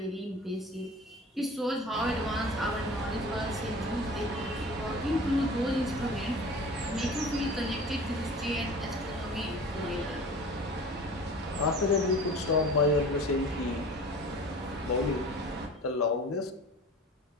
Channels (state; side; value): normal; both; correlation 0.41